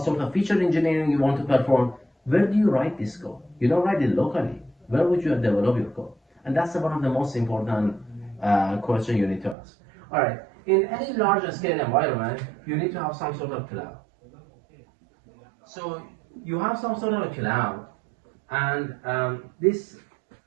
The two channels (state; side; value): drops out; left; at 9.6 s